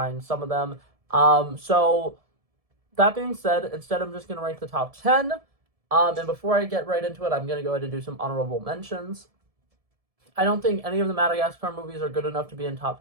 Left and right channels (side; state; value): left; late; 1.7 ms